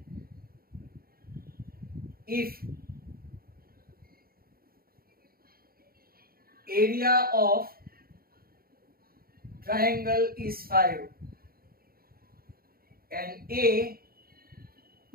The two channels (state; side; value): late; left; 0.43 ms